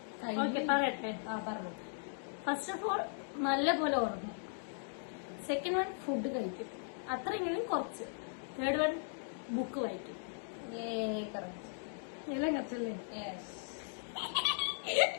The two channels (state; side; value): silent; right; digital silence